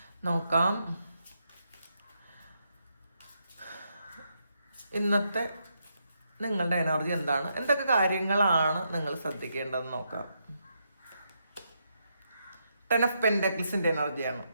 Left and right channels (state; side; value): inverted; both; correlation -0.80